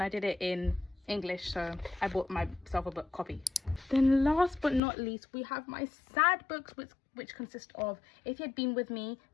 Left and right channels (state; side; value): drops out; right; at 4.8 s